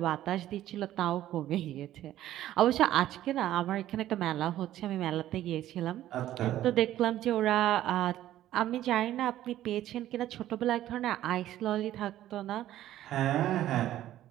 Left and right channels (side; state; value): left; quieter; 13.2 dB